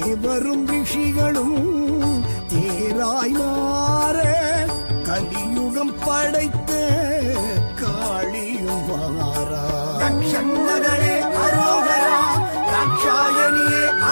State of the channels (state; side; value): inverted; both; correlation -1.00